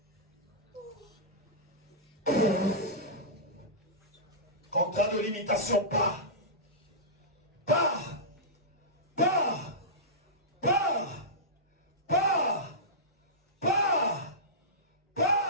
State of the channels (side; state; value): both; normal; correlation -0.16